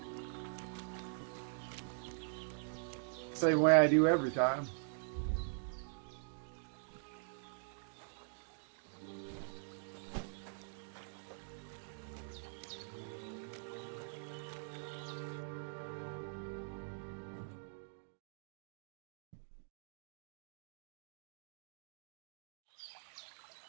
Same way I do every time.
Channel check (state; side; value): silent; left; digital silence